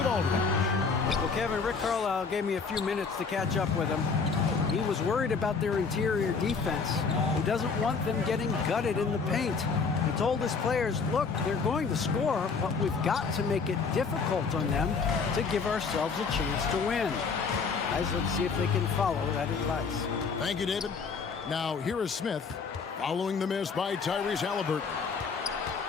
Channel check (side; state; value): right; quieter; 5.1 dB